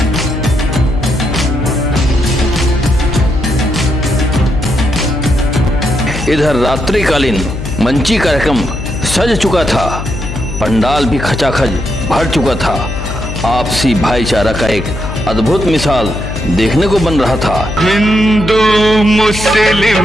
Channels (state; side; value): noise; left; hum, 7 dB below the sound